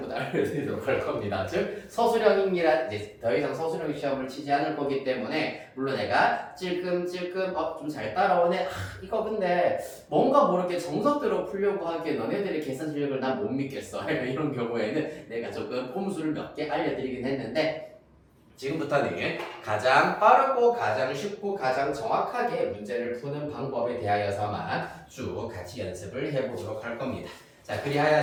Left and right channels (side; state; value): both; identical; correlation 1.00